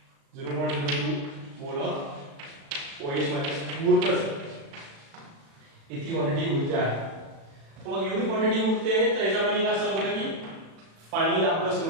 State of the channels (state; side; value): late; left; 36 ms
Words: मोल ऑफ OH मायनस उरतच. इतकी क्वांटिटी उरते आहे. मग एवढी क्वांटिटी उरते तर याचा मिनिंग असं होतं की फायनली आपलं